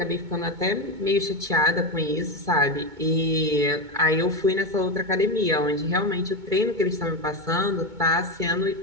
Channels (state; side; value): late; left; 2.2 ms